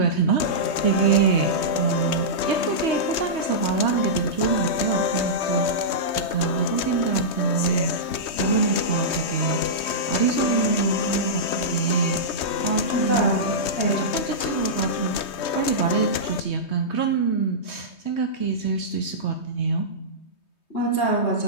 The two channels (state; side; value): late; right; 3.2 ms